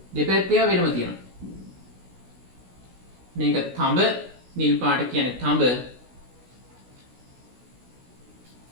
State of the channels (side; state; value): left; late; 16 ms